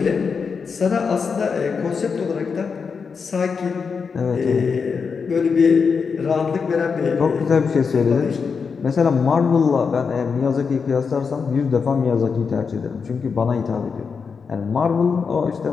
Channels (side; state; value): right; quieter; 5.6 dB